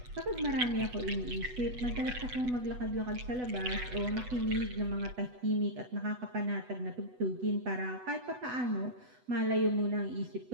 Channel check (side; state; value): left; late; 8.1 ms